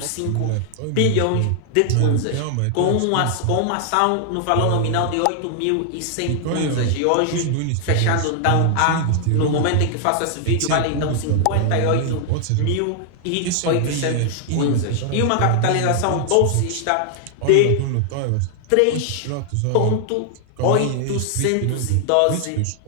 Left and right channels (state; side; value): different; both; correlation 0.00